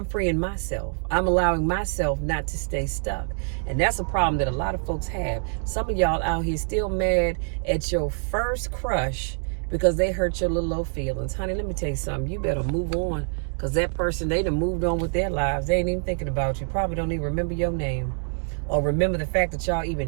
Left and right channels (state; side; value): silent; left; 61 dB below the other